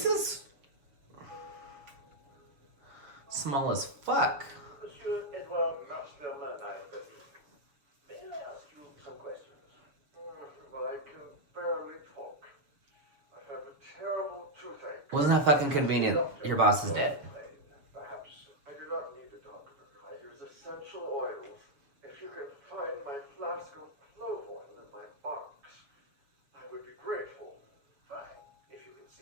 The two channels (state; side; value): late; left; 7.0 ms